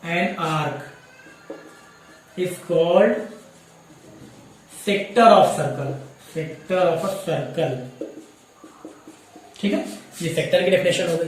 an arc is called sector of circle, sector of a circle, ठीक है। ये सेक्टर की डेफिनेशन हो गई,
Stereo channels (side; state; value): both; identical; correlation 1.00